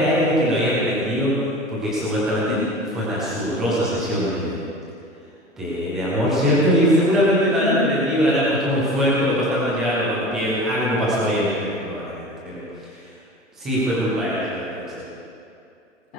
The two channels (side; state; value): both; normal; correlation 0.38